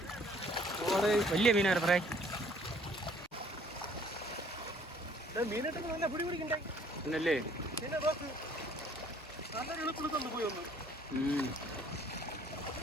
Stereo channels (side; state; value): both; normal; correlation 0.59